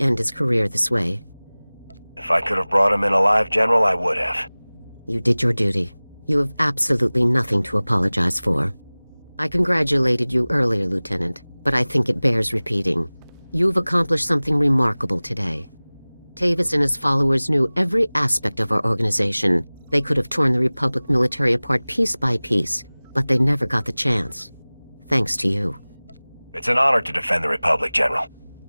his career this way. If I could have brought him in alive, General, I would have. You did your duty. You have absolutely nothing to apologize for. I congratulated you earlier, Lieutenant, but I think it bears repeating. You've accomplished something remarkable today. Tavus and his followers knew every aspect of our organization. They could have torn the Republic military apart piece by piece, but they never got the chance. Thanks to you. It's an honor to defend the Republic, General.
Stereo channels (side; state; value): both; inverted; correlation -1.00